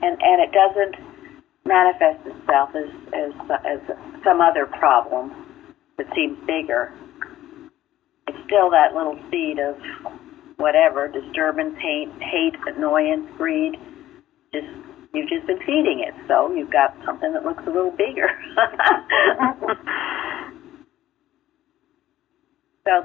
it doesn't manifest itself as some other problem that seems bigger. It's still that little seed of whatever, disturbance, hate, annoyance, greed. You've just been feeding it, so you've got something that looks a little bigger. So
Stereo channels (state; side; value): quieter; right; 13.8 dB